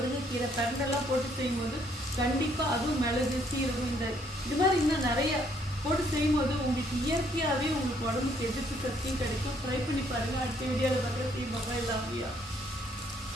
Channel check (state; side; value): normal; both; correlation 0.67